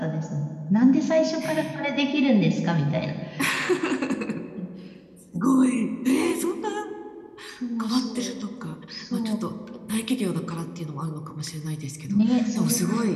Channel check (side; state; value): both; identical; correlation 1.00